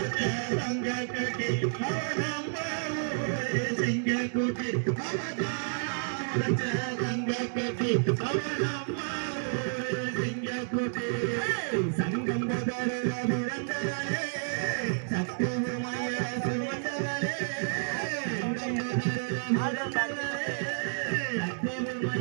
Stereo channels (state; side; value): silent; left; digital silence